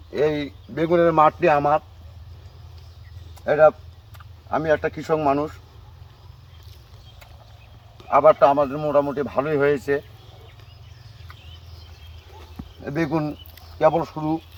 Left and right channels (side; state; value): both; identical; correlation 1.00